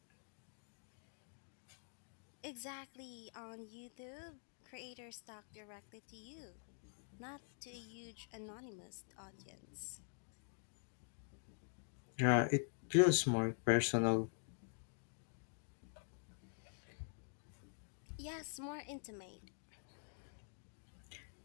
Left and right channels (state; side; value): silent; right; digital silence